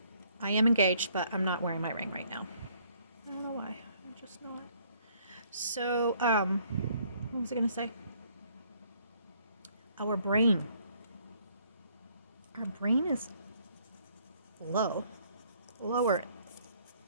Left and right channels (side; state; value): both; inverted; correlation -0.64